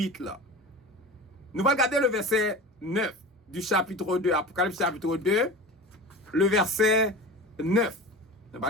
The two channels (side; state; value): both; normal; correlation 0.32